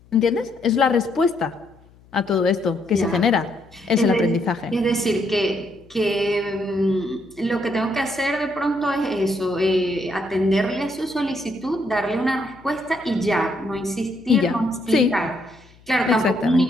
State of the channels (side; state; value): left; noise; hum, 27 dB below the sound